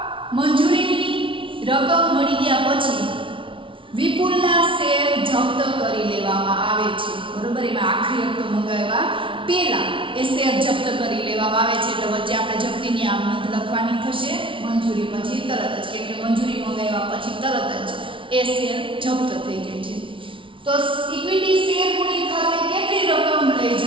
મંજૂરીની રકમ મળી ગયા પછી વિપુલના શેર જપ્ત કરી લેવામાં આવે છે. બરોબર, એમાં આખરી હપ્તો મંગાવ્યા પહેલા એ શેર જપ્ત કરી લેવામાં આવે છે. એટલે વચ્ચે આપણે જપ્તીની આમ નોંધ લખવાની થશે મંજૂરી પછી તરત જ, કેમ કે મંજૂરી મંગાવ્યા પછી તરત જ એ શેર જપ્ત થઈ જાય છે. તો ઇક્વિટી શેર મૂડી ખાતે કેટલી રકમ લઈ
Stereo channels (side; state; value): left; late; 0.25 ms